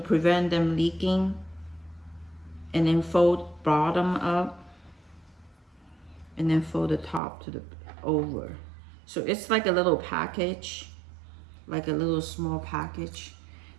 prevent them leaking. And then fold bottom up. And then fold the top to the over. So it's like a little package. Like a little small package.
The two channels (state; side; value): drops out; left; at 7.2 s